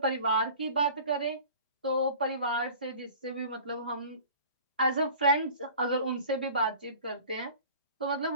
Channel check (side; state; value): both; inverted; correlation -0.43